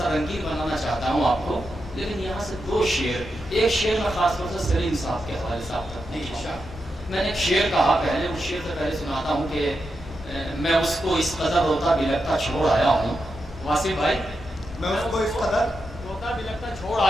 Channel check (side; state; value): both; normal; correlation 0.87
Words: رنگین بنانا چاہتا ہوں آپ کو، لیکن یہاں سے دو شعر، ایک شعر میں خاص طور سے سلیم صاحب کے حوالے سے آپ تک نہیں. میں نے ایک شعر کہا پہلے، اس شعر سے پہلے سناتا ہوں کہ میں اس کو اس قدر روتا بلکتا چھوڑ آیا ہوں. واصف بھائی، میں اس کو اس قدر روتا بلکتا چھوڑ